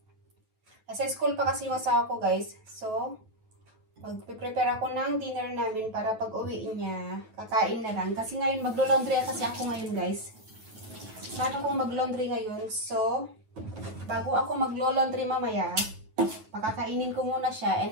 school pa kasi yung asawa ko guys. So, magpre-prepare ako ng dinner namin para pag uwi niya, kakain na lang. Kasi ngayon maglo-laundry kasi ako ngayon guys. Paano kung mag-laundry ngayon? So, bago ako maglo-laundry mamaya, pakakainin ko muna siya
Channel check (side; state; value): left; late; 9.3 ms